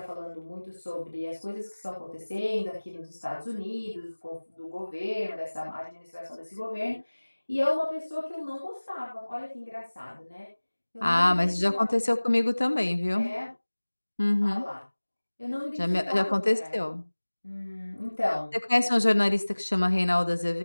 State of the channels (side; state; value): both; inverted; correlation -1.00